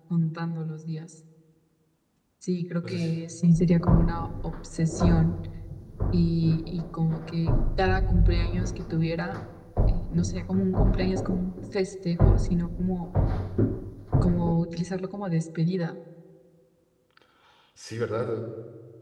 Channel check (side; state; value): both; identical; correlation 1.00